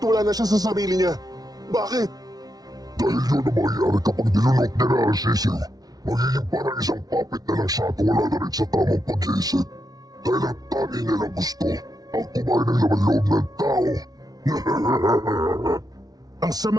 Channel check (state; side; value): late; left; 0.19 ms